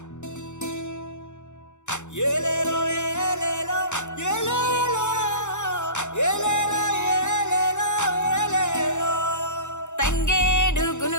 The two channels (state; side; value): late; right; 0.84 ms